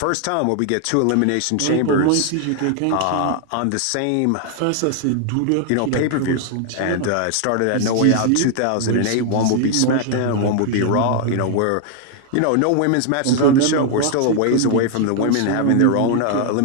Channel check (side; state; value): both; different; correlation 0.00